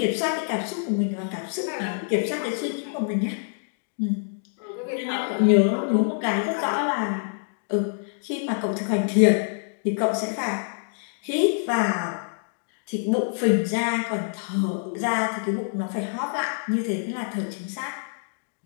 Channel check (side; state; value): right; silent; digital silence